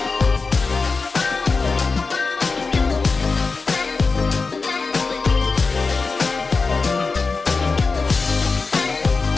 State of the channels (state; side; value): quieter; right; 4.3 dB